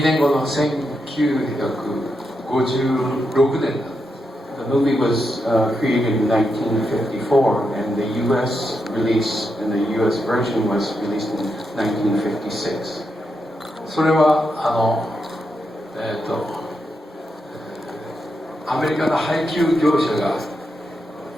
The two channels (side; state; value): both; normal; correlation 0.84